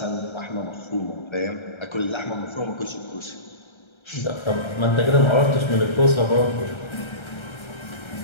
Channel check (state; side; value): late; right; 1.3 ms